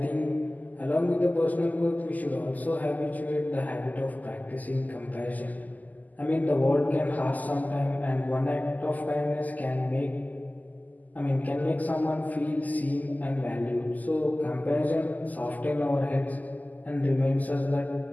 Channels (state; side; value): late; right; 0.080 ms